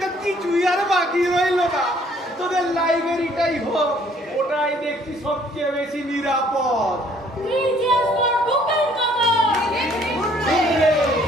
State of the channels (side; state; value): both; normal; correlation 0.61